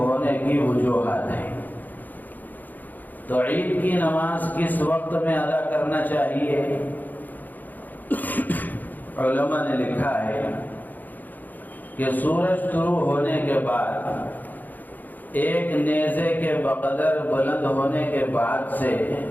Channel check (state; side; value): late; right; 0.084 ms